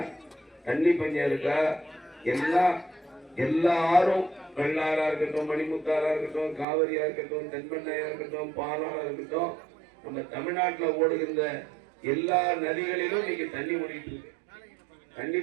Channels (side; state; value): left; drops out; at 6.7 s